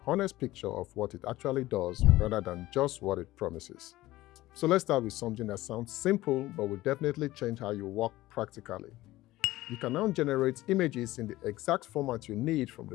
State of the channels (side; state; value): right; quieter; 17.1 dB